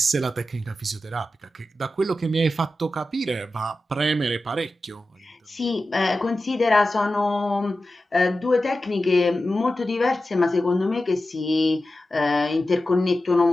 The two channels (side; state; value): both; normal; correlation 0.93